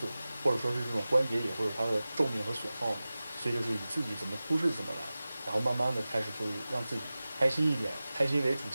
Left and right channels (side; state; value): both; inverted; correlation -0.97